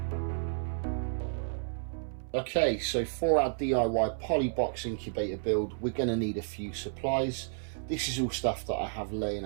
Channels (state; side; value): silent; left; 57 dB below the other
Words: Okay, so for our DIY Polybox incubator build, we're going to need a few supplies. This is all stuff that I have laying